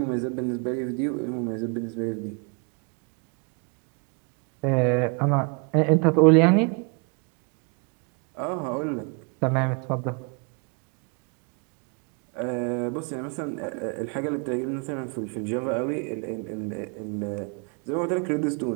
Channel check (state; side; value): quieter; left; 35.0 dB